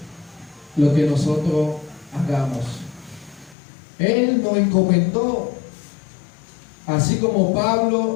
lo que nosotros hagamos. Él nos encomendó, así como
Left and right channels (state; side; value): drops out; right; at 3.6 s